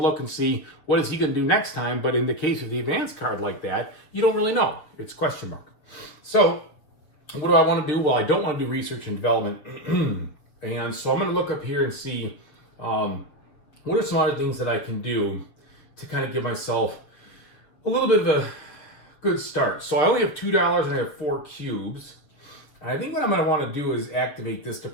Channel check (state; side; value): late; right; 6.9 ms